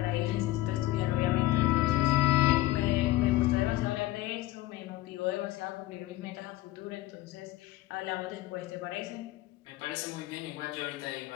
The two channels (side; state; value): right; quieter; 16.5 dB